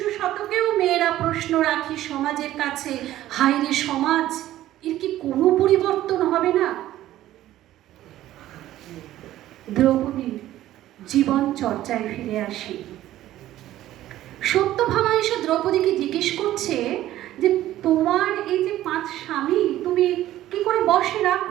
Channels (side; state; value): left; quieter; 13.9 dB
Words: শতকেও মেয়েরা প্রশ্ন রাখি সমাজের কাছে, হায় রে সমাজ, এর কি কোনো পরিবর্তন হবে না? দ্রৌপদীর জীবন চর্চায় ফিরে আসি। সত্যভামা এসে দ্রৌপদীকে জিজ্ঞেস করছে যে তোমার এই যে 5 স্বামী, তুমি কি করে বশে